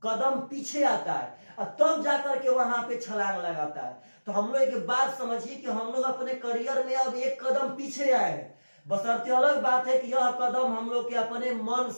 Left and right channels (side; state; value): both; inverted; correlation -1.00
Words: कदम पीछे आता है और तब जाकर के वहां पे छलांग लगाता है। तो हम लोग एक बात समझिए कि हम लोग अपने करियर में अब एक कदम पीछे आए हैं। बशर्ते अलग बात है कि यह कदम हम लोग के अपने मन